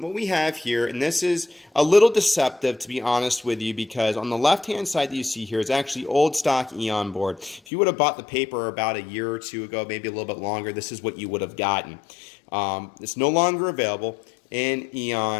we have here, and this is a little deceptive to be honest with you, because on the left hand side that you see here is actually old stock Eon board. If you would have bought the paper about a year or two ago, maybe a little bit longer, this is what you would have gotten. It's no longer available in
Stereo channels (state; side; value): drops out; right; at 7.6 s